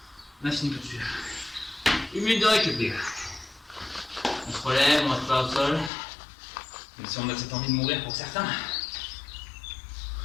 On a fini tout de suite. 1 minute de récup, les gars. On se relève, on reste pas au sol. Même si on a cette envie de mourir pour certains.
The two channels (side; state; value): right; drops out; at 5.9 s